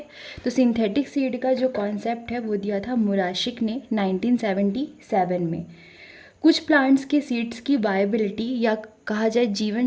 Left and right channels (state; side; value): identical; both; correlation 1.00